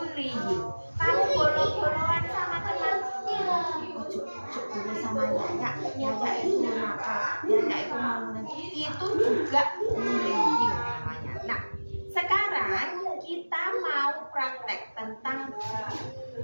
Kamu bolong-bolongan sama teman, ojo boleh sama Yaya itu nakal, Yaya itu mau itu juga bullying namanya. Nah, sekarang kita mau praktek tentang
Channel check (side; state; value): both; inverted; correlation -1.00